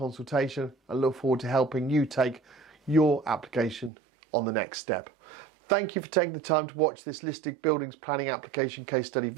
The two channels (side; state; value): left; drops out; at 3.9 s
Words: and look forward to helping you take your application on the next step. Thank you for taking the time to watch this listed buildings planning application case study